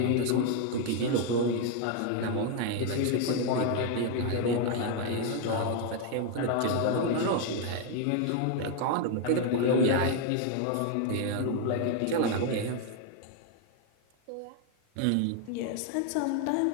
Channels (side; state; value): both; different; correlation 0.00